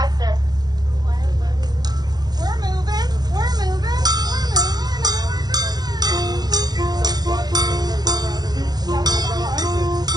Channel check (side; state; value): left; late; 0.20 ms